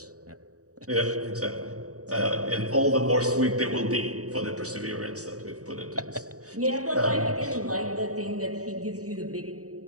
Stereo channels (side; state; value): left; late; 0.66 ms